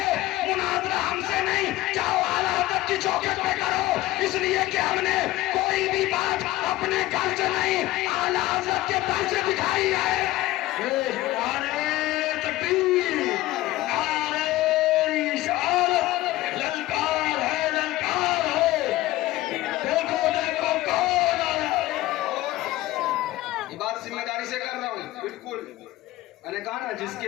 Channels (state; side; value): quieter; right; 16.9 dB